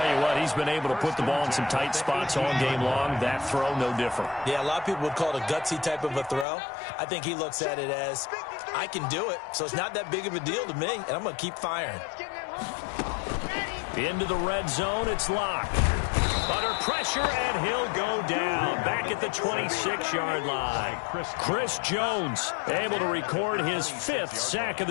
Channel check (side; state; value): right; drops out; at 6.5 s